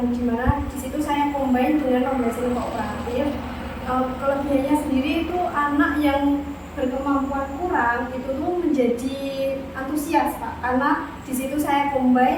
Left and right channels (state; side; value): identical; both; correlation 1.00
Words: dimana di situ saya combine dengan pembelajaran kooperatif. Kelebihannya sendiri itu anak yang berkemampuan kurang itu tuh menjadi antusias Pak, karena di situ saya